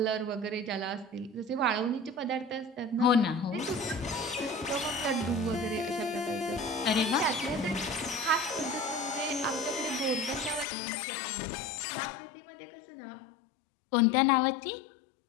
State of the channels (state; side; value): drops out; right; at 10.7 s